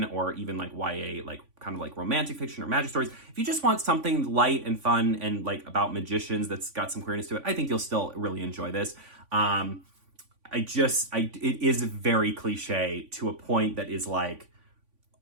or even like YA, like kind of like romantic fiction or magic stories, if you just want something light and fun and like about magicians that's got some queerness to it, I think you'll still really enjoy this. It is very cliche to a point that is like,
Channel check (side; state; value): left; late; 3.5 ms